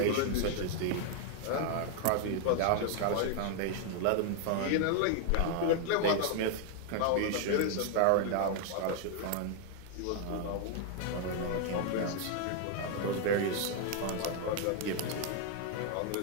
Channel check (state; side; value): different; both; correlation 0.00